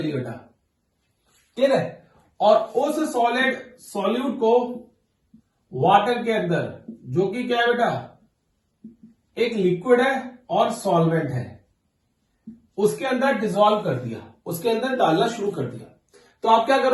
ली बेटा, ठीक है, और उस सॉलिड सॉल्यूट को वाटर के अंदर, जो कि क्या है बेटा एक लिक्विड है और सॉल्वेंट है, उसके अंदर डिसॉल्व कर दिया, उसके अंदर डालना शुरू कर दिया। तो आप क्या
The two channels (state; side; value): identical; both; correlation 1.00